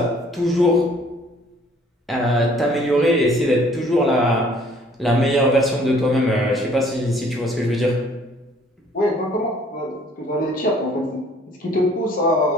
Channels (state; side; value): normal; both; correlation 0.58